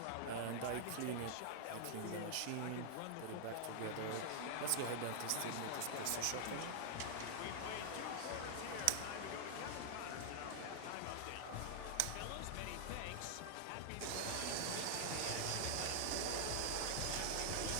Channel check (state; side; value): different; both; correlation 0.00